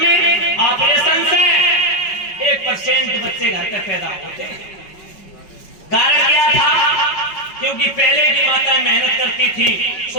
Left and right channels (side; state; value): right; late; 5.3 ms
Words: ऑपरेशन से 1% बच्चे घर पे पैदा होते। कारण क्या था? क्योंकि पहले की माता मेहनत करती थी,